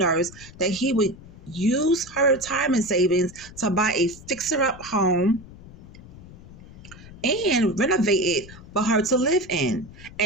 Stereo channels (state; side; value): noise; left; rumble, 18 dB below the sound